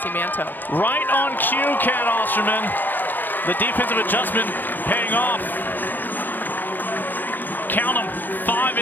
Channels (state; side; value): late; right; 0.089 ms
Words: Manto. Right on cue, Kat Osterman. The defensive adjustment paying off. Count them, 5